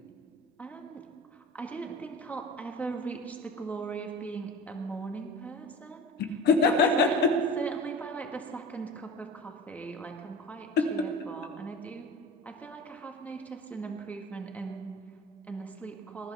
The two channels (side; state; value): both; normal; correlation 0.35